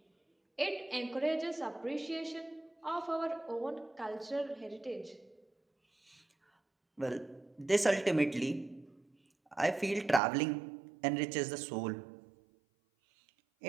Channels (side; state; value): left; drops out; at 10.2 s